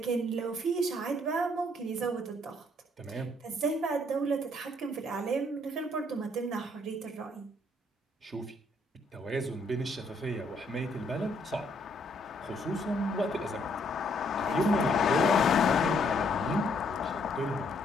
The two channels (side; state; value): both; normal; correlation 0.68